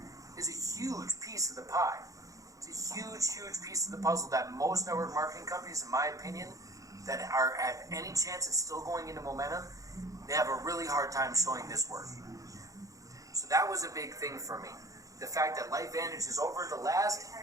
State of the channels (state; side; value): late; left; 0.16 ms